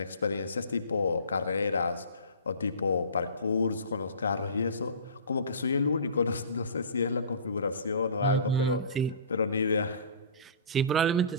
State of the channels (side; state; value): both; inverted; correlation -0.40